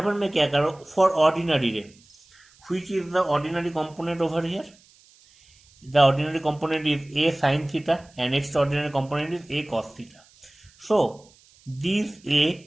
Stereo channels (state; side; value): noise; right; hiss, 29 dB below the sound